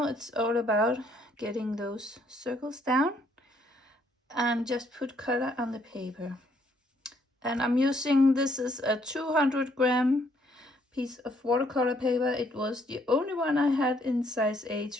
it's all about getting those circles down and just put color on the paper. And I'm using, this is a 200-gram piece of watercolor paper. It was the only one I had in size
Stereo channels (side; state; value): both; normal; correlation 0.68